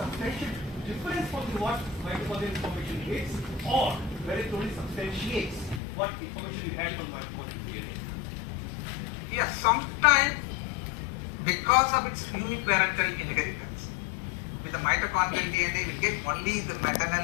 difference from what mitochondrial information is, or whether it only substantiates what information you have from mitochondrial DNA. Yes, sometimes because of its uniparental inheritance, with the mitochondrial DNA, we get only the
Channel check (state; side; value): drops out; right; at 5.8 s